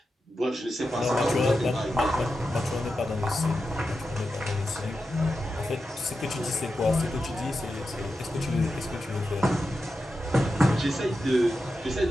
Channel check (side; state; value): both; normal; correlation 0.90